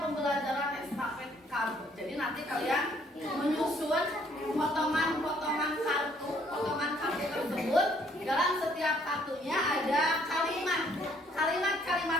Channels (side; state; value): both; normal; correlation 0.64